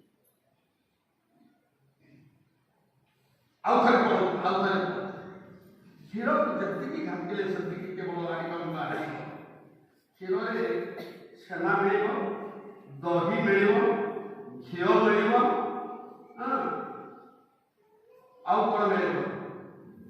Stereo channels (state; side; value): identical; both; correlation 1.00